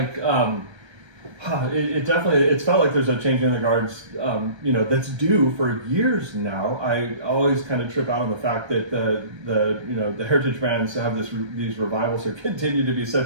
it definitely it's felt like there's a change in the guards. That's due for years now. I always kind of trip out on the fact that the heritage brands have these revivals or continue to be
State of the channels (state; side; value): late; left; 1.3 ms